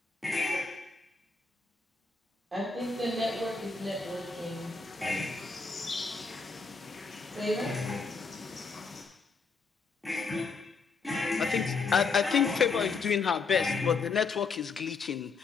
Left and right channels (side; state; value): right; quieter; 4.5 dB